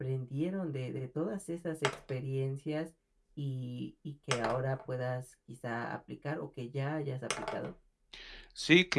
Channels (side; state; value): both; identical; correlation 1.00